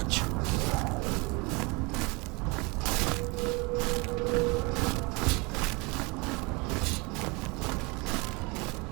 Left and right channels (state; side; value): quieter; left; 27.9 dB